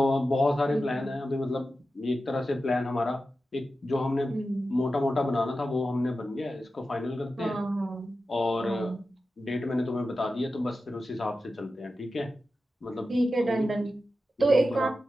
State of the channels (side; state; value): both; normal; correlation 0.92